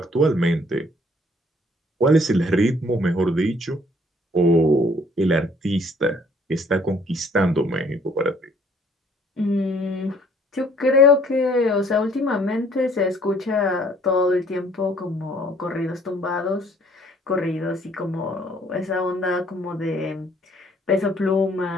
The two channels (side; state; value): both; normal; correlation 0.60